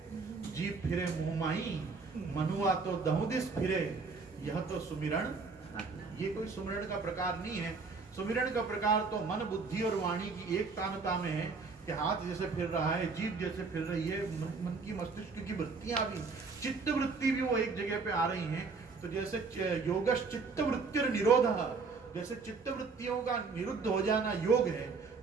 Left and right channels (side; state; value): left; quieter; 4.5 dB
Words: जीप फिरे मुंह माई, मनुआ तो दहुदिस फिरे, यह तो सुमिरण, ये कोई सुमिरण का प्रकार नहीं है। सुमिरण का प्रकार तो मन बुद्धि और वाणी की एक तानता में है कि हाथ जैसे फिर रहा है, जीभ जैसे फिर रही है, मन की मस्तिष्क की वृत्तियां भी, चित्त वृत्ति भी वो एक जगह पे आ रही हैं। तो जैसे योगश चित्त वृत्तिर निरोध, जैसे चित्त वृत्तियों का निरुद्ध हो जाना योग है,